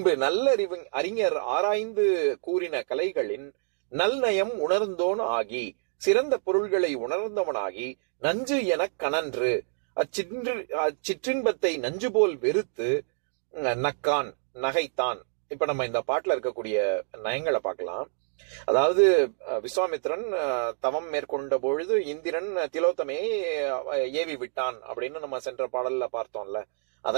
நல்லறிவு அறிஞர் ஆராய்ந்து கூறின கலைகளின் நல்நயம் உணர்ந்தோன் ஆகி சிறந்த பொருள்களை உணர்ந்தவனாகி நஞ்சு எனக் கனன்று அச்சிற்றின்பத்தை நஞ்சு போல் வெறுத்து நக்கான் நகைத்தான். இப்ப நம்ம இந்த பாட்டுல இருக்கக்கூடிய நயங்களை பார்க்கலாம். அதாவது விஸ்வாமித்திரன் தவம் மேற்கொண்ட பொழுது இந்திரன் திலோத்தமையை ஏவி விட்டான் அப்படின்னு நம்ம சென்ற பாடல்ல பார்த்தோம்ல.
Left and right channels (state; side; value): silent; left; digital silence